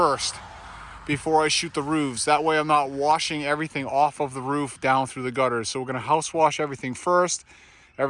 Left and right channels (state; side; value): identical; both; correlation 1.00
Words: before I shoot the roofs. That way I'm not washing everything off of the roof down through the gutters. So we're going to house wash everything first.